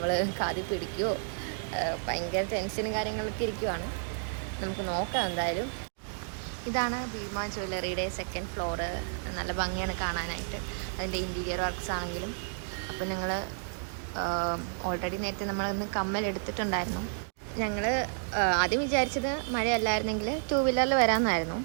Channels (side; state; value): left; silent; digital silence